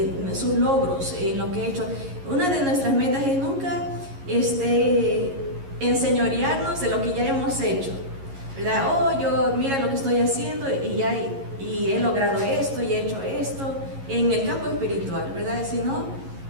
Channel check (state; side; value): late; left; 11 ms